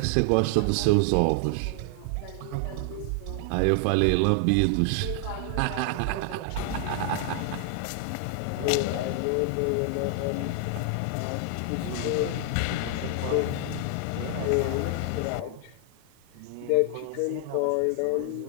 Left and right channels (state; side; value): different; both; correlation 0.00